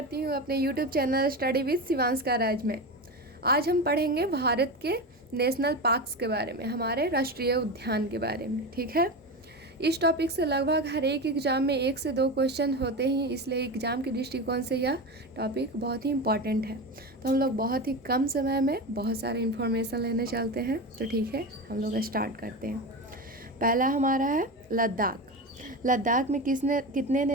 हूँ अपने यूट्यूब चैनल स्टडी विद शिवांशका राज में। आज हम पढ़ेंगे भारत के नेशनल पार्क्स के बारे में, हमारे राष्ट्रीय उद्यान के बारे में। ठीक है, इस टॉपिक से लगभग हर एक एग्ज़ाम में 1 से 2 क्वेश्चन होते ही, इसलिए एग्ज़ाम के दृष्टिकोण से यह टॉपिक बहुत ही इम्पॉर्टेंट है। तो हम लोग बहुत ही कम समय में बहुत सारे इन्फॉर्मेशन लेने चलते हैं। तो ठीक है, हम लोग स्टार्ट करते हैं। पहला हमारा है लद्दाख। लद्दाख में कितने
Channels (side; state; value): both; normal; correlation 0.22